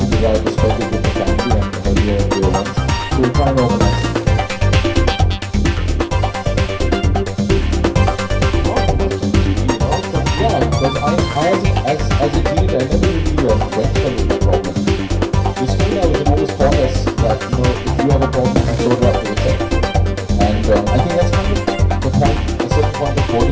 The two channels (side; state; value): both; identical; correlation 1.00